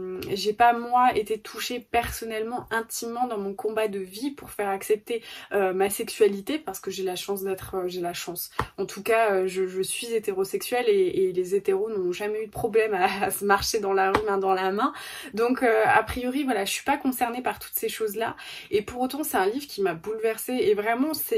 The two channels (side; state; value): both; identical; correlation 1.00